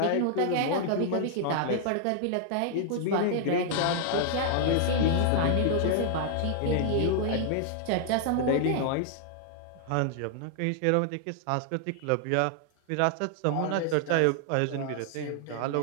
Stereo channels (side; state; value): both; different; correlation 0.00